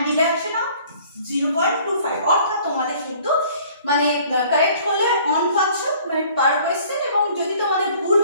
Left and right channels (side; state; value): both; inverted; correlation -0.54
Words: deduction of 0.25, অর্থাৎ তোমাদের কিন্তু মানে কারেক্ট হলে অন পাচ্ছ মানে পার কোশ্চেন, এবং যদি তোমাদের ভুল